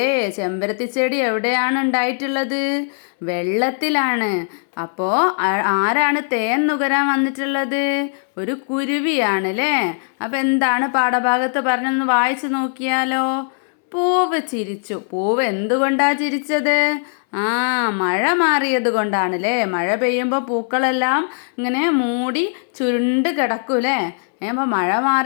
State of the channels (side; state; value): right; silent; 65 dB below the other